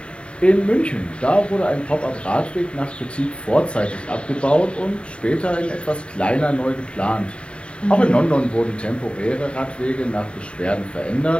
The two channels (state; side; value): late; right; 0.057 ms